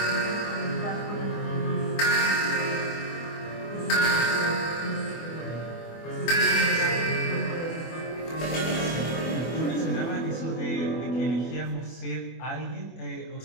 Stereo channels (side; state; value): right; late; 24 ms